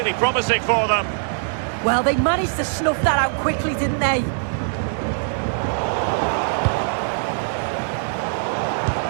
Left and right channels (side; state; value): left; silent; digital silence